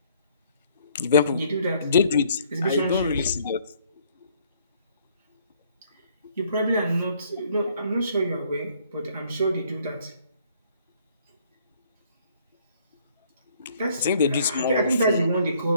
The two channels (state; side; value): inverted; both; correlation -0.63